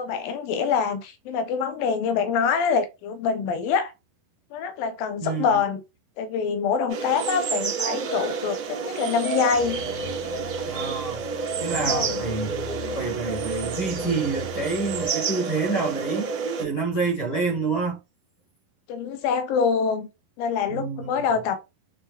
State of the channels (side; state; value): right; late; 10 ms